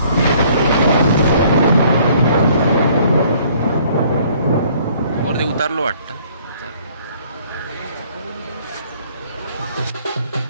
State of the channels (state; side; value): inverted; both; correlation -0.59